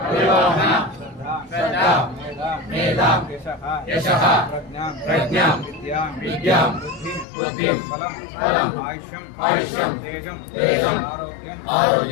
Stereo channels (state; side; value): drops out; right; at 7.2 s